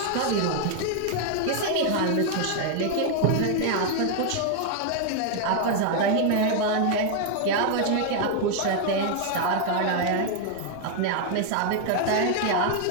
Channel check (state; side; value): different; both; correlation 0.00